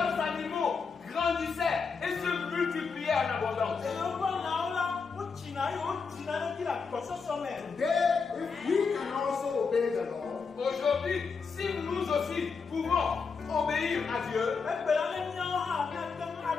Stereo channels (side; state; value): right; quieter; 5.2 dB